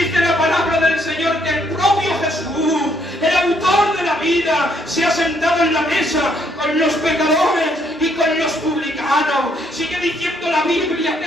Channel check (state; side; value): normal; both; correlation 0.70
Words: la palabra del Señor que el propio Jesús, el autor de la vida, se ha sentado en la mesa con los pecadores y con los publicanos. Sigue diciendo la Biblia,